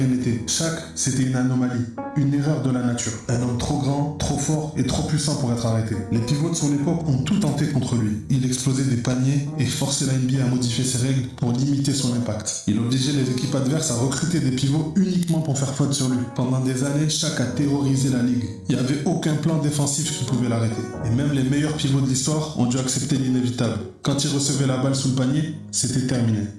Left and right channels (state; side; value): identical; both; correlation 1.00